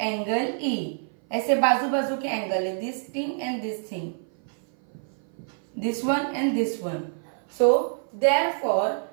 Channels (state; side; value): silent; left; 56 dB below the other